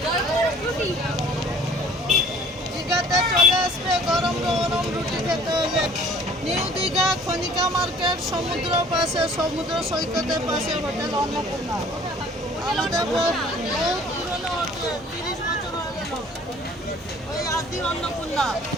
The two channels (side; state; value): both; normal; correlation 0.52